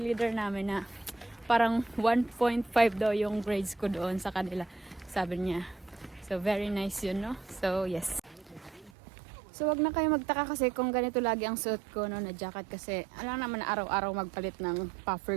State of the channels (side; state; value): left; drops out; at 8.9 s